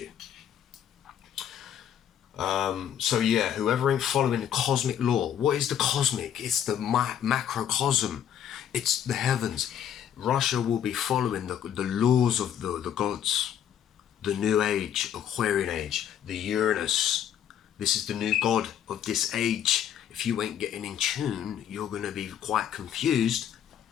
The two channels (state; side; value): quieter; right; 9.6 dB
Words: So yeah, whoever ain't following the cosmic law. What is the cosmic? It's the macrocosm. It's the heavens. Russia will be following the laws of the gods. The new age, Aquarian age, the Uranus. This is the new god of this age. If you ain't getting in tune, you're going to be quite confused